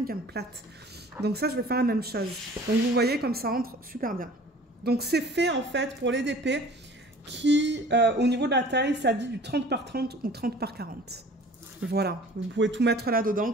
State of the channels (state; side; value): normal; both; correlation 0.47